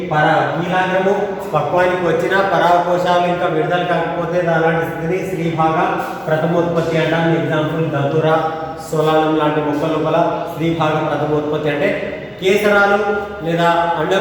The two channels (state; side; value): identical; both; correlation 1.00